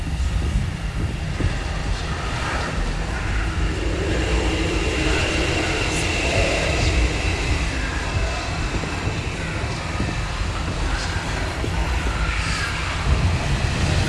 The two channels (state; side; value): identical; both; correlation 1.00